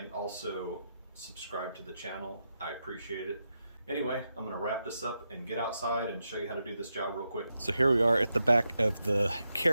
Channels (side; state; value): both; inverted; correlation -0.86